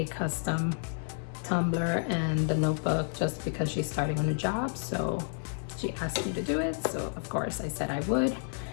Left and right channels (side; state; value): right; silent; digital silence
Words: custom tumbler and the notebook just because she's starting a new job. So she asked me to do it, so of course I said I would.